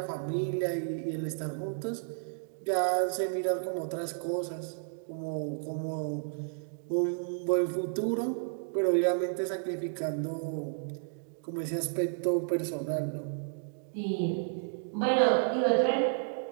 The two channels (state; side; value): silent; left; digital silence